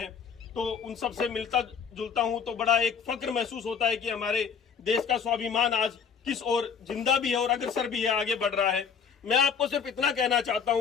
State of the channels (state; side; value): quieter; right; 6.5 dB